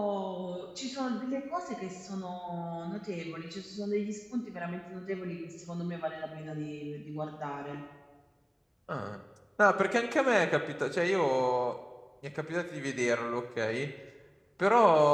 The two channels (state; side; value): identical; both; correlation 1.00